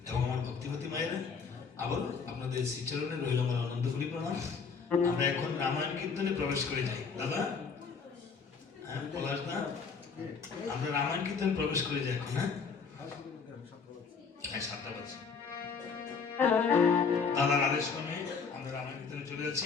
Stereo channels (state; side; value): quieter; right; 5.5 dB